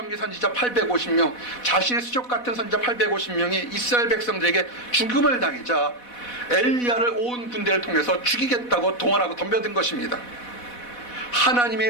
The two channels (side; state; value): right; late; 4.1 ms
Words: 선지자 850명, 자신의 수족 같은 선지자 850명이 이스라엘 백성들에게 죽음을 당하자 엘리야를 온 군대를 통해서 죽이겠다고 동원하고 덤벼든 것입니다.